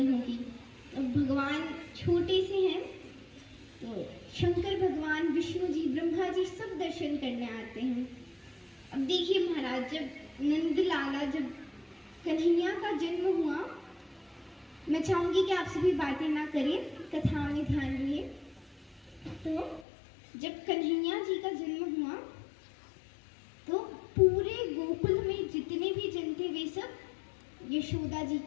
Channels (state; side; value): drops out; right; at 19.9 s